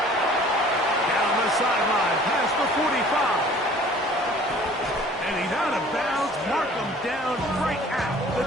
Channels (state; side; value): normal; both; correlation 0.51